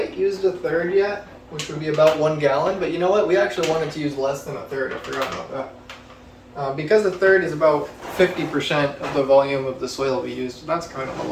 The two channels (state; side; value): identical; both; correlation 1.00